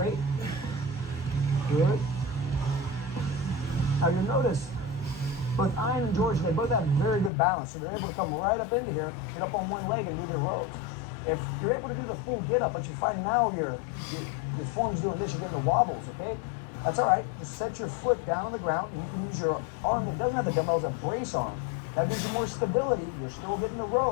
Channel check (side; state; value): right; drops out; at 7.3 s